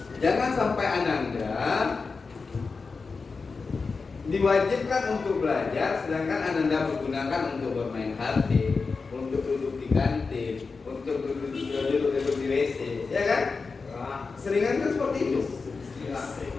Jangan sampai Ananda diwajibkan untuk belajar, sedangkan Ananda menggunakan untuk bermain HP, untuk duduk di kantin, untuk duduk di WC, ya kan? Seringan kan seperti itu,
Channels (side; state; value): right; quieter; 4.5 dB